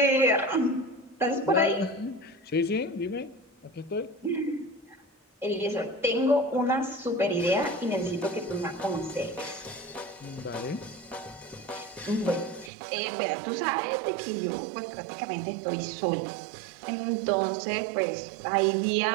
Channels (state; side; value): drops out; left; at 12.7 s